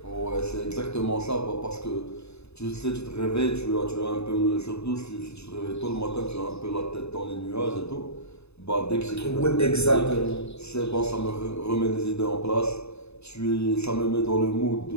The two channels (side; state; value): right; late; 0.80 ms